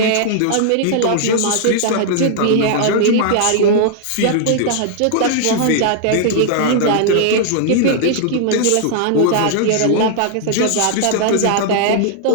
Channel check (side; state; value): both; different; correlation -0.01